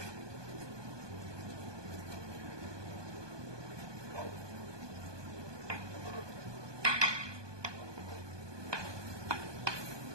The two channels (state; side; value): late; left; 1.2 ms